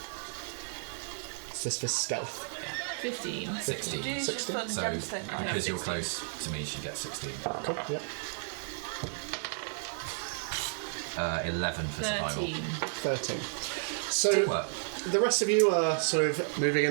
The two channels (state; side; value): silent; left; digital silence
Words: Is this for stealth? 15. 16. Do you just 16? put So, 10%? because you're close to me, she gets 16. Cool, yeah. 11 for survival. 13. 13. So, What? the rest of you are sort of moving,